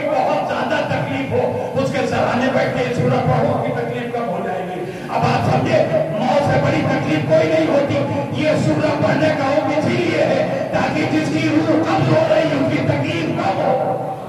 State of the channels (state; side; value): identical; both; correlation 1.00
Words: بہت زیادہ تکلیف ہو اس کے سرانے بیٹھ کے سورہ پڑھو کی تکلیف کم ہو جائے گی. اب آپ سمجھے موت سے بڑی تکلیف کوئی نہیں ہوتی. یہ سورہ پڑھنے کا حکم اسی لیے ہے تاکہ جس کی روح قبض ہو رہی اس کی تکلیف کم ہو.